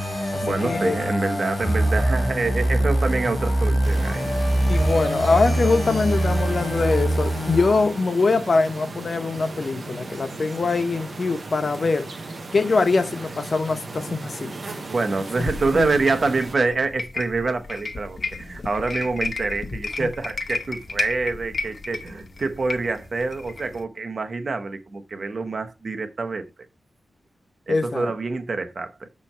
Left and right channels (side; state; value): both; normal; correlation 0.92